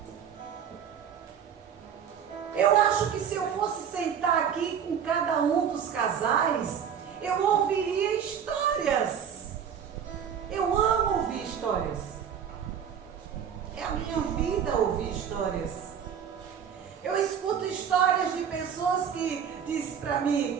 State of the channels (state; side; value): quieter; left; 8.1 dB